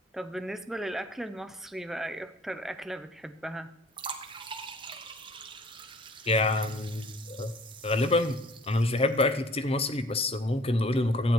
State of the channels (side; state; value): both; normal; correlation 0.54